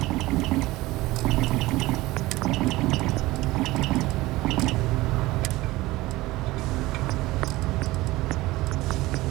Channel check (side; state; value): left; quieter; 19.1 dB